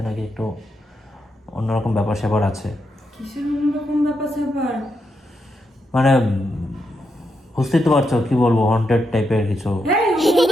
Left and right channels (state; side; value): normal; both; correlation 0.83